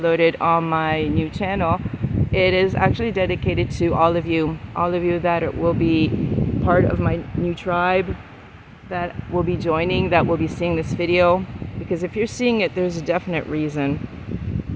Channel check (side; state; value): both; identical; correlation 1.00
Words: on my new channel, it is actually dedicated to all of you that will be part of my new tribe, that will be joining, that will be seeing this video. Because if you're seeing it, there's a definite reason.